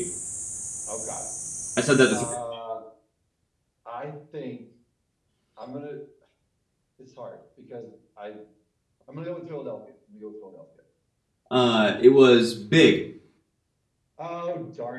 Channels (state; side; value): identical; both; correlation 1.00